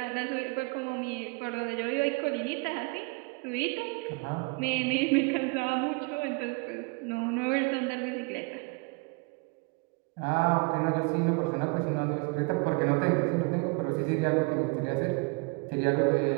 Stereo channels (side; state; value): left; quieter; 29.9 dB